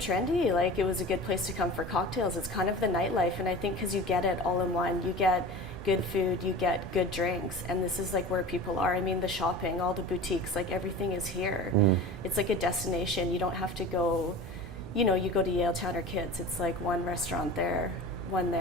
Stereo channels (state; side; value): noise; right; hum, 16 dB below the sound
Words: Like, it was a good place to come for cocktails. It's kind of the nightlife, and I think because you get it all in one. You get good food, you get good drinks, and this is like where people are. I mean, the shopping, all the boutiques, like everything is here. It's like a destination. You don't have to go, you know, you go to Yaletown or Kids. It's like one restaurant there, one